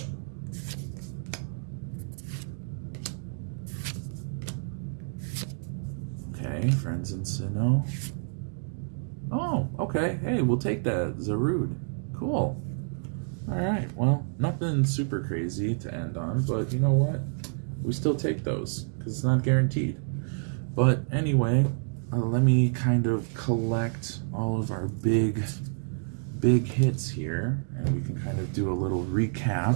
Okay, Friends in Sinnoh. Oh, okay. Hey, we'll take that. Zarude. Cool. All right. Well, nothing super crazy to end on, but you know what? We still take those because it's not guaranteed. But anyway, let me kind of collect all of our big hits here, and we can kind of do a little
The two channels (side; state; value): left; silent; 59 dB below the other